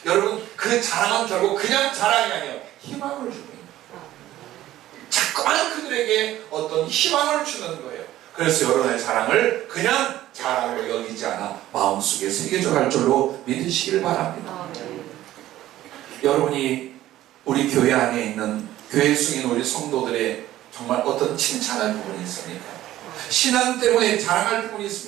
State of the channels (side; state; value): left; quieter; 14.2 dB